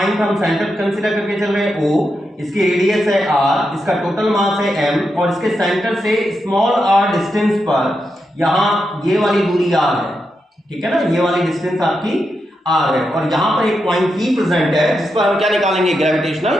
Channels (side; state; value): both; normal; correlation 0.86